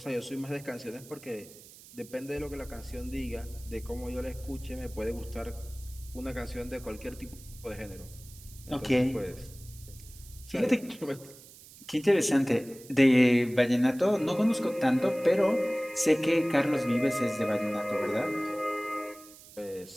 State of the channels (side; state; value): right; noise; hiss, 20 dB below the sound